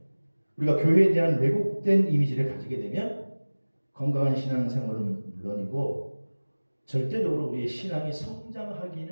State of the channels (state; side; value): inverted; both; correlation -1.00